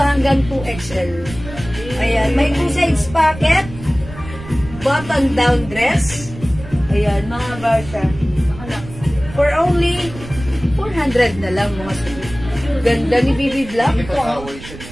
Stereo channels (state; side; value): noise; right; rumble, 14 dB below the sound